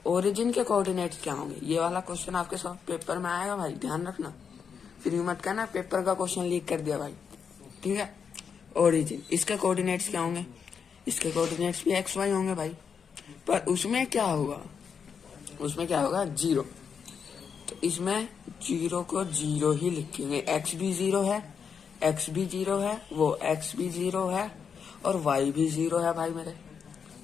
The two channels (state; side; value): quieter; right; 6.6 dB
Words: ओरिजिन के कोऑर्डिनेट्स क्या होंगे, ये वाला क्वेश्चन आपके सब पेपर में आएगा भाई, ध्यान रखना, फिर मत कहना पेपर का क्वेश्चन लीक कर दिया भाई, ठीक है। ओरिजिन, इसके कोऑर्डिनेट्स क्या होंगे, इसके कोऑर्डिनेट्स भी एक्स वाई होंगे भाई, पर उसमें क्या होगा, उसमें क्या होगा 0, तो इसमें 0 को 0 ही लिखेंगे। एक्स भी 0 है, एक्स भी 0 है, वो एक्स भी 0 है और वाई भी 0 है भाई, मेरे